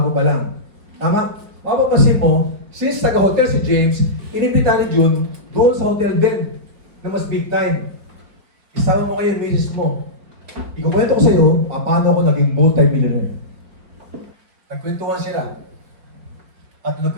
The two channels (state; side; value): late; left; 4.9 ms